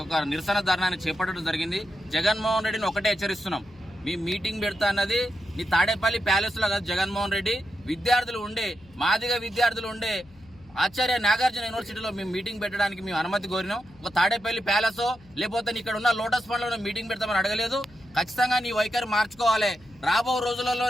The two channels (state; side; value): noise; left; hum, 26 dB below the sound